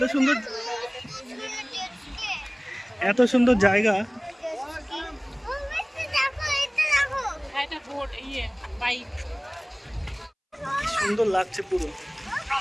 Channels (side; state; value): both; identical; correlation 1.00